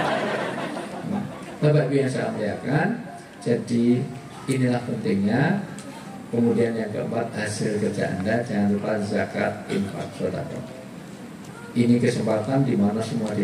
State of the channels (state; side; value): identical; both; correlation 1.00